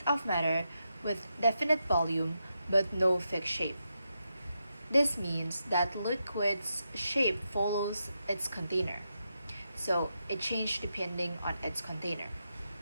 of matter with definite volume but no fixed shape. This means that liquid's shape follows its container, so it changes depending on its container.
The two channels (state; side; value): inverted; both; correlation -0.85